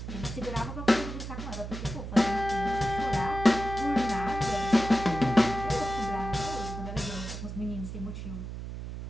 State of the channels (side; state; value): right; noise; hum, 8 dB below the sound